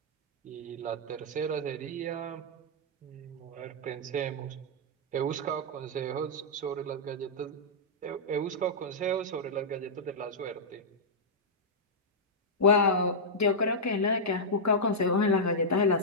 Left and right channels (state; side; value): normal; both; correlation -0.09